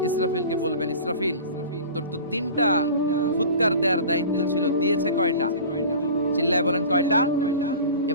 ইসরাফিলকে বলবেন, ইসরাফিল তোর তো 3টা ফুৎকার দেওয়ার দায়িত্ব ছিল, দিয়েছে কয়টা? চিল্লায় বলেন কয়টা?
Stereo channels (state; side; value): inverted; both; correlation -0.38